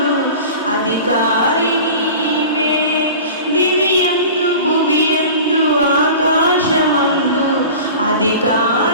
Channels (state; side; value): inverted; both; correlation -0.38